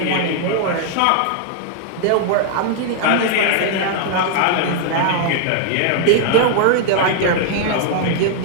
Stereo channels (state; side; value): different; both; correlation -0.01